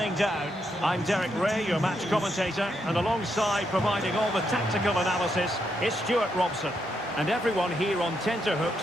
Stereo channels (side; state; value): both; normal; correlation 0.80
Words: down. I'm Derek Ray, your match commentator, and alongside providing all the tactical analysis is Stuart Robson. And everyone here on tenterhooks,